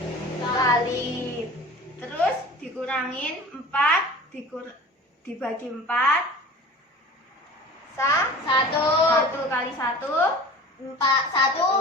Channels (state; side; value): normal; both; correlation 0.40